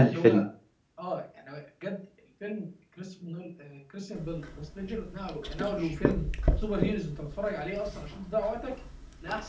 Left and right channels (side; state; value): both; identical; correlation 1.00